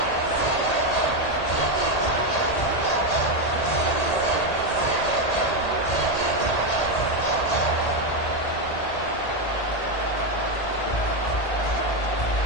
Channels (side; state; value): right; late; 1.8 ms